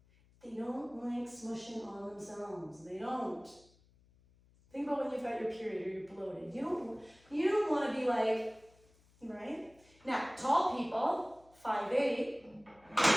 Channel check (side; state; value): left; noise; hum, 30 dB below the sound